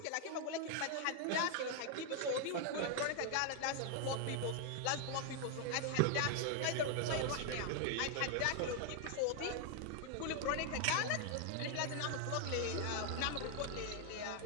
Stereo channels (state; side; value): different; both; correlation 0.00